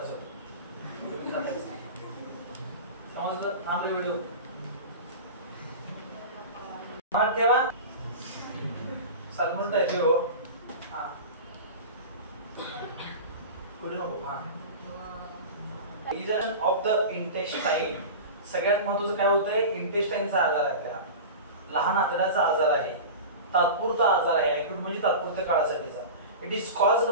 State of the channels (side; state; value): both; inverted; correlation -0.30